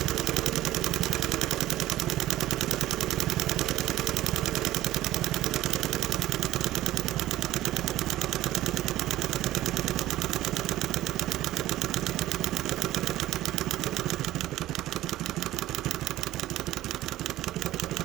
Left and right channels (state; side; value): quieter; left; 15.0 dB